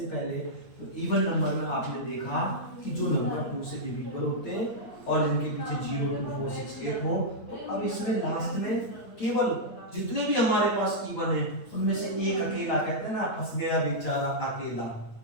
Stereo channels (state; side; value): late; right; 9.0 ms